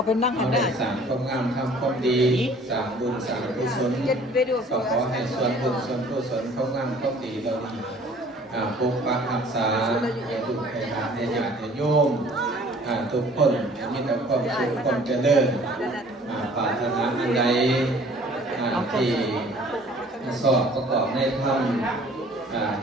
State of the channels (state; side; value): normal; both; correlation 0.52